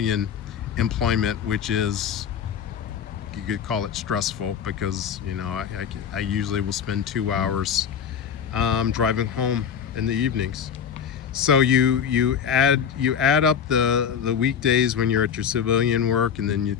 employment, which is, you could call it stressful, because, you know, I usually will spend 2 hours driving home in the evenings. So you add up the weekdays when you're at your civilian work, and then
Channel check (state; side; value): quieter; right; 7.7 dB